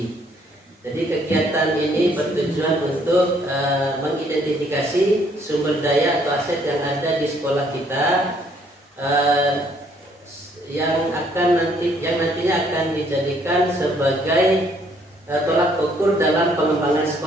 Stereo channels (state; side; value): normal; both; correlation 0.65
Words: Jadi kegiatan ini bertujuan untuk mengidentifikasi sumber daya atau aset yang ada di sekolah kita yang nantinya akan dijadikan sebagai tolak ukur dalam pengembangan